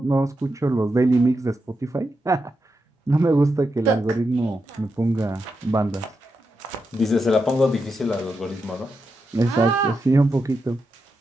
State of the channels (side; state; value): both; normal; correlation 0.86